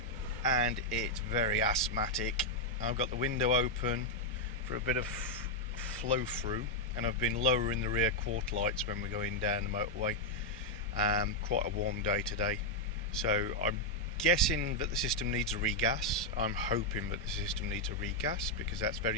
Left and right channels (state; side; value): normal; both; correlation -0.01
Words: and it's very asthmatic. I've got the window open for a bit of flow through, and I've been lowering the rear quarter lights when we're going down the motorway. Quite a warm day today, so I'm guessing that the system needs a regas. I'm hoping that the system needs a regas because that's